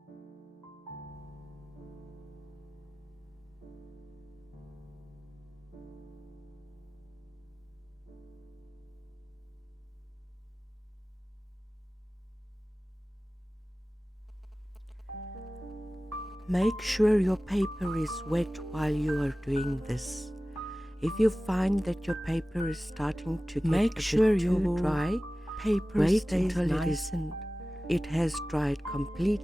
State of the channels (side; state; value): both; normal; correlation 0.96